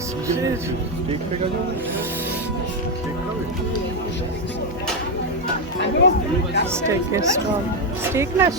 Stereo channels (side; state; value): both; normal; correlation 0.06